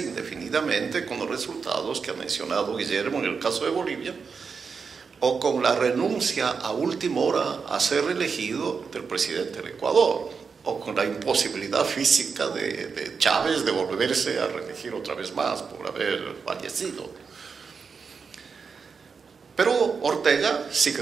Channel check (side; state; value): left; quieter; 5.5 dB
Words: indefinidamente con los resultados que ha mencionado Guillermo en el caso de Bolivia, o con la renuncia a última hora a ser reelegido del presidente del Ecuador, o con la imposibilidad física de Chávez de volverse a reelegir otra vez más por haber fallecido. Pero Ortega